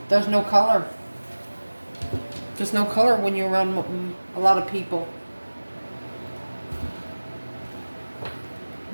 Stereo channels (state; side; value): inverted; both; correlation -1.00